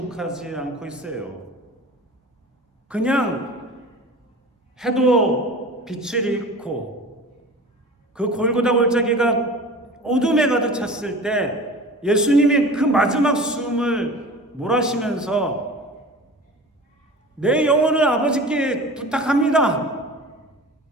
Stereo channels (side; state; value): both; normal; correlation 0.38